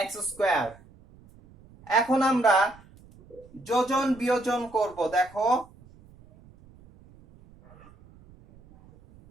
x স্কোয়ার। এখন আমরা যোজন বিয়োজন করব। দেখো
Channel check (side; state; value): right; noise; rumble, 25 dB below the sound